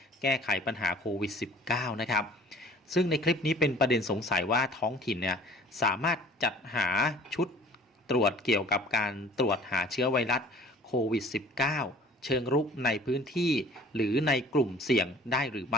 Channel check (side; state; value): both; normal; correlation 0.49